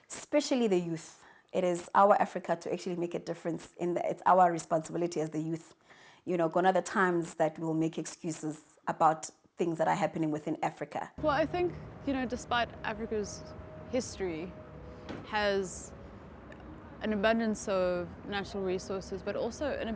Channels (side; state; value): both; identical; correlation 1.00